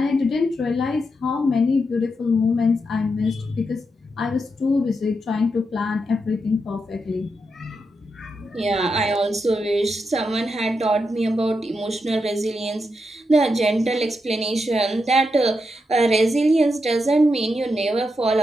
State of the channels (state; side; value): normal; both; correlation 0.84